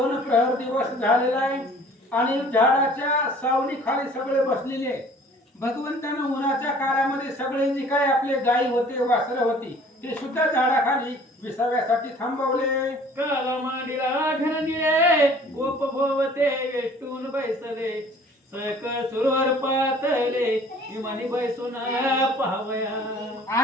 प्रहर दिवस झालेला आहे आणि झाडाच्या सावली खाली सगळे बसलेले. भगवंतानं उन्हाच्या काळामध्ये सगळे जे काही आपले गायी होते वासरं होती ते सुद्धा झाडाखाली विसाव्यासाठी थांबवले. काला मांडीला घनदिले गोप भोवते वेष्टून बैसले सकळ सुरवर पातले विमानी बैसून पाहावया.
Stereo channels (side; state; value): both; normal; correlation 0.51